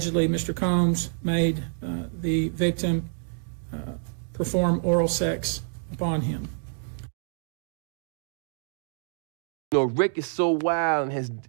Mr. Combs made the victim perform oral sex upon him. You know, Rick is so wild and has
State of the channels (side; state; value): left; silent; digital silence